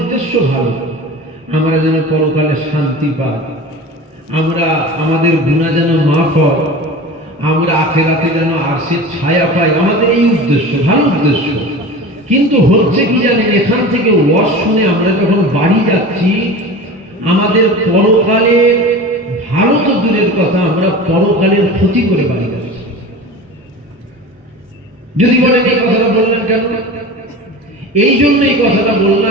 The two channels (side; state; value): both; normal; correlation 0.34